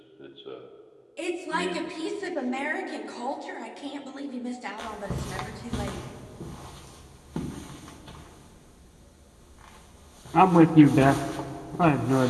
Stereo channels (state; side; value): identical; both; correlation 1.00